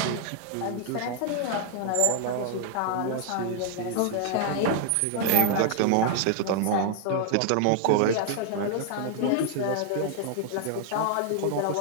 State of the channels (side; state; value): both; different; correlation 0.00